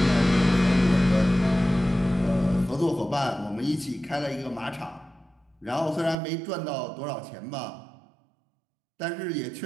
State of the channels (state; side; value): drops out; left; at 6.2 s